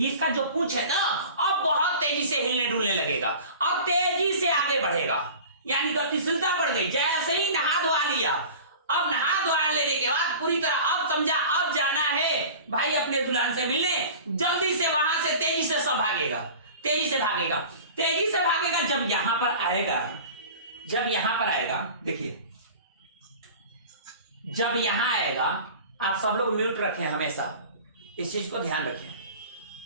इसका जो पूंछ है ना, अब बहुत तेजी से हिलने डुलने लगेगा और तेजी से आगे बढ़ेगा, यानी गतिशीलता बढ़ गई। जैसे ही नहा धोआ लिया, अब नहा धोआ लेने के बाद पूरी तरह अब समझा, अब जाना है भाई अपने दुल्हन से मिलने, जल्दी से वहां से तेजी से सब भागेगा, तेजी से भागेगा, तेजी से भागेगा। जब यहां पर आएगा, जब यहां पर आएगा, देखिए जब यहां आएगा, आप सब लोग म्यूट रखें, हमेशा इस चीज को ध्यान रखें,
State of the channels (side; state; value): both; inverted; correlation -0.39